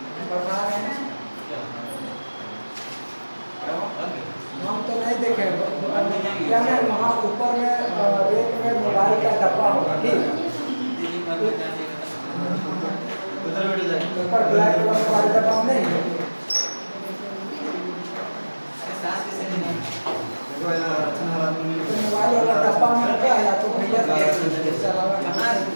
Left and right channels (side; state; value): both; inverted; correlation -1.00